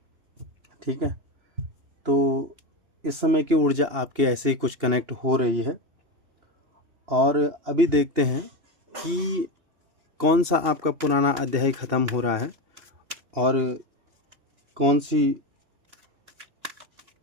ठीक है। तो इस समय की ऊर्जा आपके ऐसे ही कुछ कनेक्ट हो रही है और अभी देखते हैं कि कौन सा आपका पुराना अध्याय ख़त्म हो रहा है और कौन सी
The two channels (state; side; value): late; left; 2.8 ms